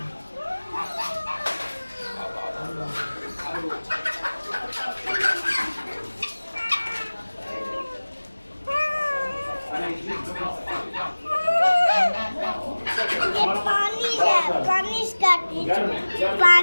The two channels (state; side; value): inverted; both; correlation -1.00